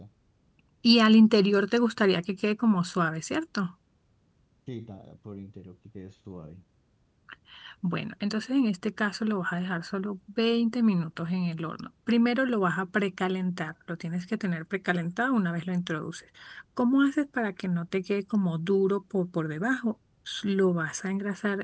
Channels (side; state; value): both; identical; correlation 1.00